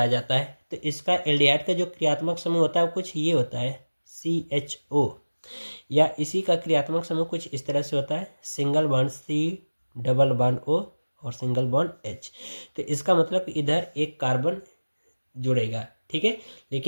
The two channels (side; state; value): both; inverted; correlation -1.00